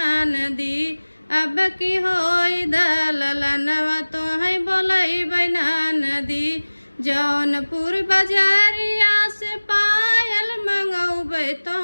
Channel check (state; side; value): inverted; both; correlation -1.00